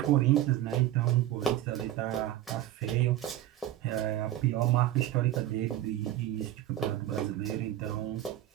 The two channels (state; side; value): quieter; left; 13.1 dB